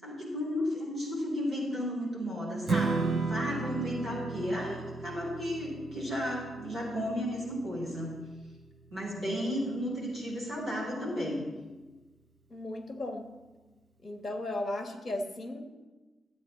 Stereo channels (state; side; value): normal; both; correlation 0.76